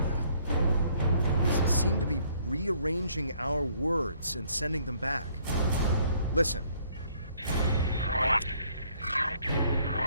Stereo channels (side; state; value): both; inverted; correlation -0.64